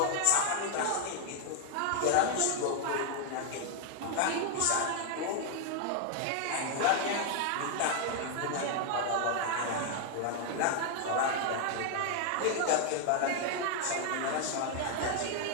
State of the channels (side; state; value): both; different; correlation 0.00